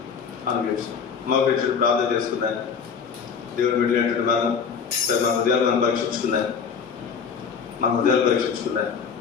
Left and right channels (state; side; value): quieter; right; 6.4 dB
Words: మా గురించి ప్రార్థన చేసుకుందాం. దేవుని విడినటువంటి మనం సరే మన హృదయాలు మనం పరీక్షించుకుందాం.